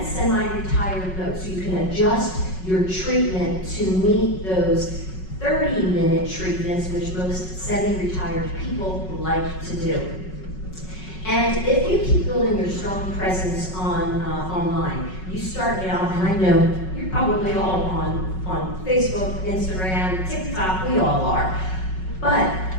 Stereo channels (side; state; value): right; late; 5.4 ms